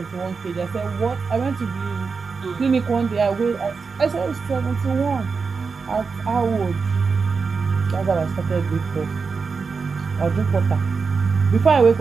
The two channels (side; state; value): left; quieter; 5.0 dB